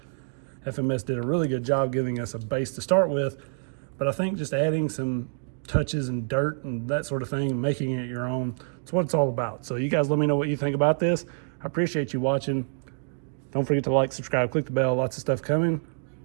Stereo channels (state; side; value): silent; left; digital silence